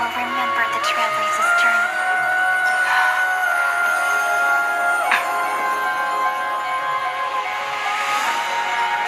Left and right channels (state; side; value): identical; both; correlation 1.00